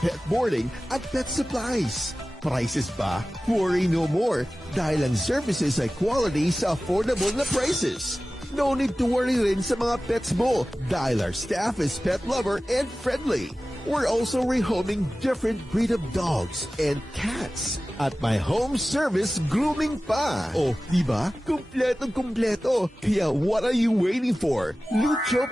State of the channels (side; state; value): both; normal; correlation 0.96